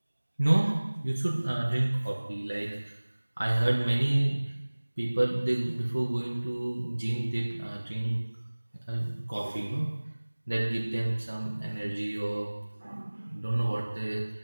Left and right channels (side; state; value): both; inverted; correlation -1.00